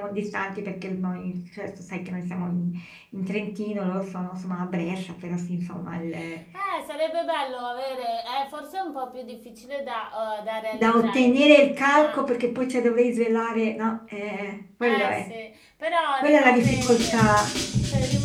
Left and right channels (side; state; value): both; identical; correlation 1.00